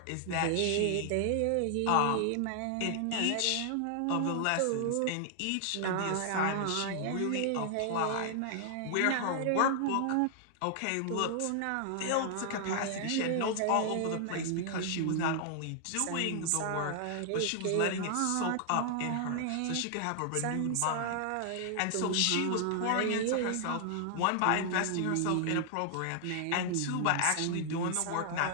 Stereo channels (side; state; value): both; different; correlation 0.00